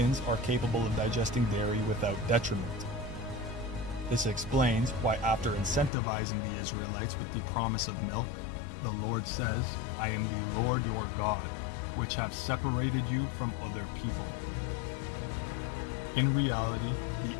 are capable of digesting dairy without detriment. This explains why after incentivizing the Israelites with the promise of milk, the Lord says, "I am the Lord your God, which have separated you from other people." In reality, the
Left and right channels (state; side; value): drops out; right; at 5.9 s